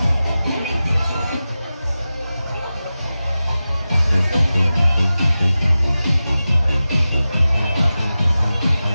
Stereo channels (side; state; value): both; inverted; correlation -0.94